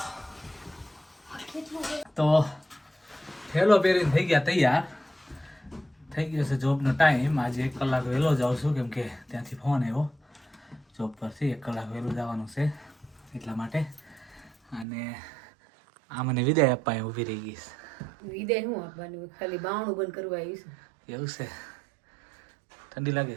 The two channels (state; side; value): drops out; left; at 14.9 s